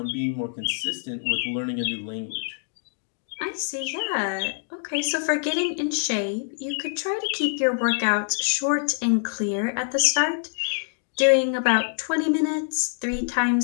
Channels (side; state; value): right; silent; digital silence